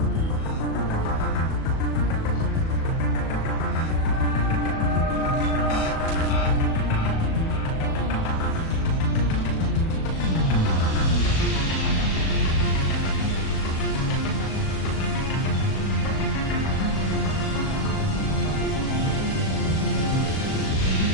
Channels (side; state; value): right; late; 37 ms